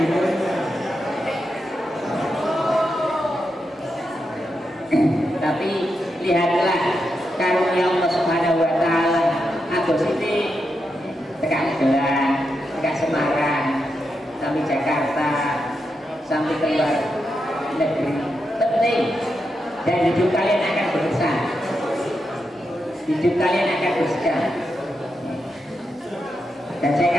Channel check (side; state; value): both; normal; correlation 0.86